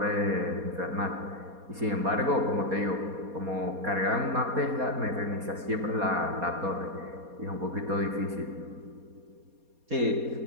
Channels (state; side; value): late; left; 4.2 ms